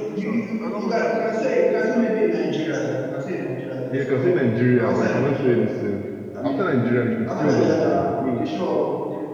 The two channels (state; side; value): identical; both; correlation 1.00